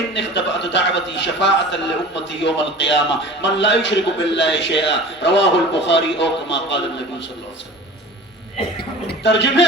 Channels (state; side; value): normal; both; correlation 0.39